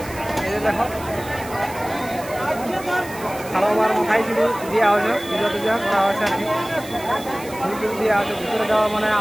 এই যে দেখো খাবার মাথায় কিন্তু দেওয়া হয়েছে, পূজা টুজা করা হয়েছে আর কি, ফুল টুল দেওয়া আছে। ভিতরে যাওয়া মানে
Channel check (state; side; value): noise; right; hiss, 16 dB below the sound